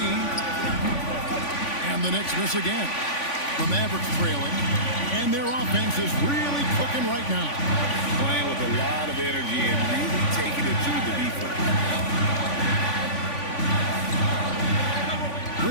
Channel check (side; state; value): right; late; 3.5 ms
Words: And the Knicks miss again. The Mavericks trailing. And their offense is really cooking right now. Playing with a lot of energy and really taking it to the defense.